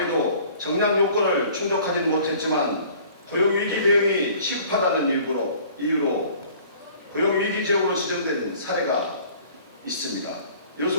정량 요건을 충족하지는 못했지만 고용위기 대응이 시급하다는 이유로 고용위기 지역으로 지정된 사례가 있습니다.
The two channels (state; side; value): inverted; both; correlation -0.51